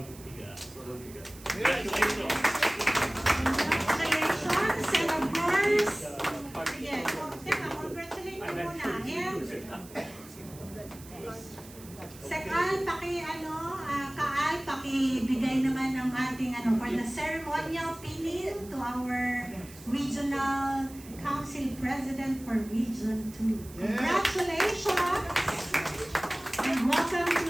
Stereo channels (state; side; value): noise; right; hiss, 19 dB below the sound